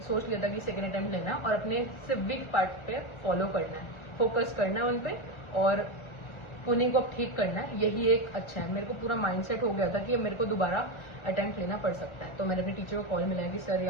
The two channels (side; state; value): right; late; 1.3 ms